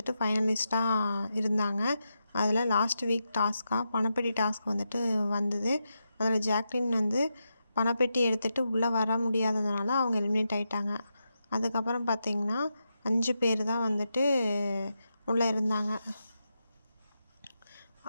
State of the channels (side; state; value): both; inverted; correlation -0.87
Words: ஃபைனலிஸ்ட்டாக இருந்தாங்க. அதில் லாஸ்ட் வீக் பணப்பெட்டி டாஸ்க் வந்தது. அதில் ஜாக்லின் பணப்பெட்டி எடுத்துகிட்டு உள்ளே வர முடியாததுனால அவங்க எலிமினேட் ஆகிட்டாங்க. அதுக்கப்புறம் பார்த்திங்கன்னா 5 பேர் தான் உள்ளே இருந்தாங்க.